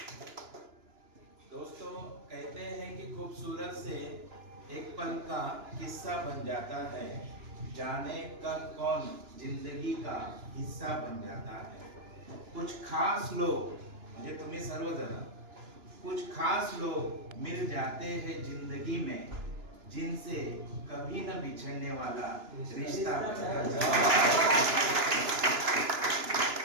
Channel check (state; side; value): late; left; 2.9 ms